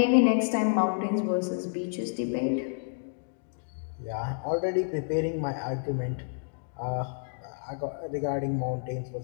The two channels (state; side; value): silent; right; digital silence